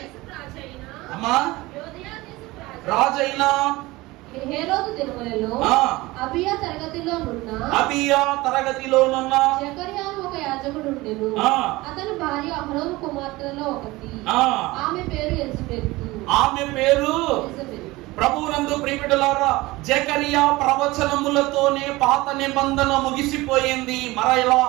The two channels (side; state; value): left; quieter; 20.4 dB